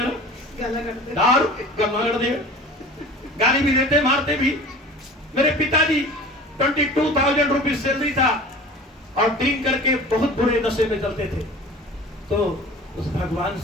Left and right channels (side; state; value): both; normal; correlation 0.40